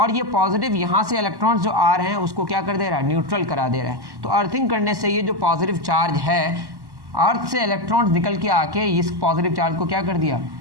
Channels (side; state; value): left; late; 1.1 ms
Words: ये पॉजिटिव यहाँ से इलेक्ट्रॉन्स जो आ रहे हैं उसको क्या कर दे रहा है, न्यूट्रल करा दे रहा है। तो अर्थिंग करने से ये जो पॉजिटिव चार्ज है, अर्थ से इलेक्ट्रॉन्स निकल के आके इस पॉजिटिव चार्ज को क्या कर दिया,